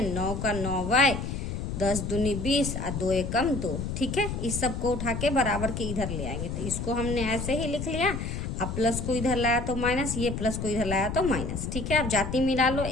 9 का 9y, 10 दूनी 20 और 2 एकम 2। ठीक है, इस सब को उठा के बराबर के इधर ले आएंगे। तो इसको हमने ऐसे ही लिख लिया, अब प्लस को इधर लाया तो माइनस, ये प्लस को इधर लाया तो माइनस। ठीक है, अब जाति मिला लो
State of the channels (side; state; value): left; noise; rumble, 4 dB below the sound